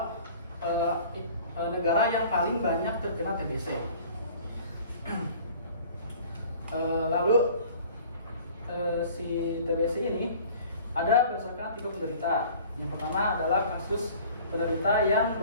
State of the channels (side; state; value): both; inverted; correlation -0.48